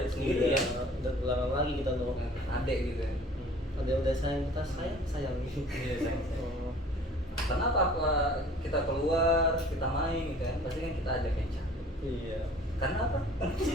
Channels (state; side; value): normal; both; correlation 0.50